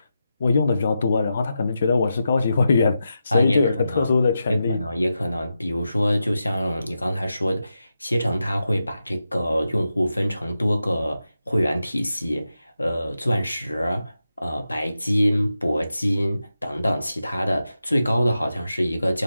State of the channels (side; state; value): both; inverted; correlation -0.89